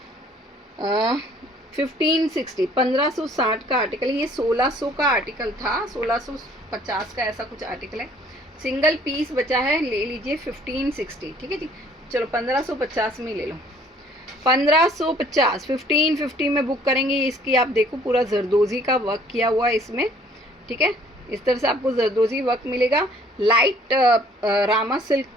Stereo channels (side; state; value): both; normal; correlation 0.58